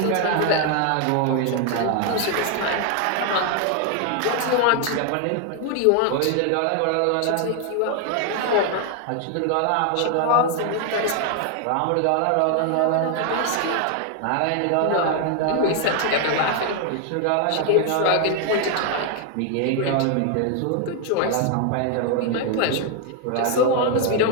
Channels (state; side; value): different; both; correlation 0.00